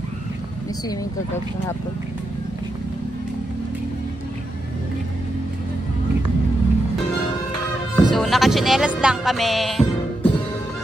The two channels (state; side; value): normal; both; correlation 0.85